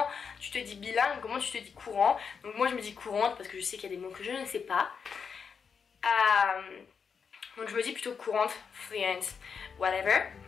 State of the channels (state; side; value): quieter; right; 6.2 dB